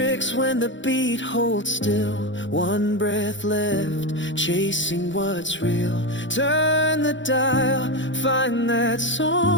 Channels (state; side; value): late; right; 0.54 ms